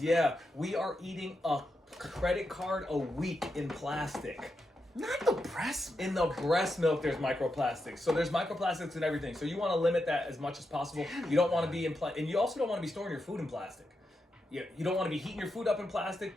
milk? Yeah, we are eating a credit card a week in plastic. Not the breast milk. In the breast milk, there's microplastics. So there's microplastics in everything. So you want to limit that as much as possible. You don't want to be and you also don't want to be storing your food in plastic. You don't want to be heating your food up in plastic,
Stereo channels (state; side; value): normal; both; correlation 0.86